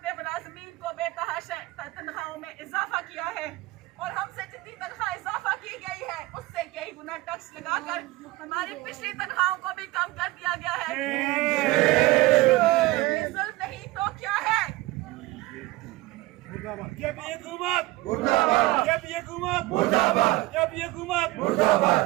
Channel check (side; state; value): left; quieter; 19.5 dB